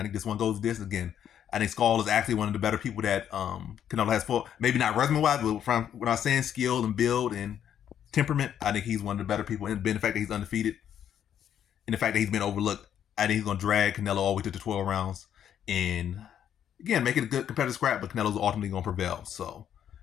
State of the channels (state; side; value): quieter; right; 9.6 dB